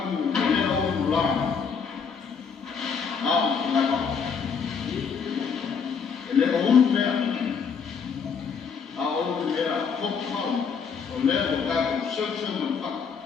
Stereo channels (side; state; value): right; quieter; 6.1 dB